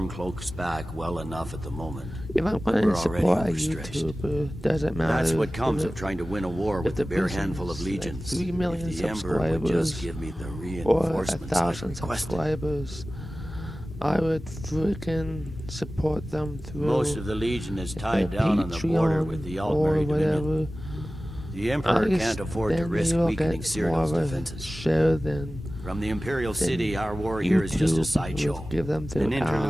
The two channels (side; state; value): both; normal; correlation 0.96